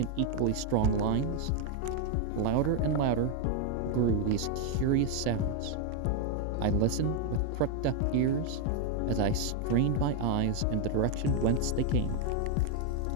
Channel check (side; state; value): both; different; correlation 0.01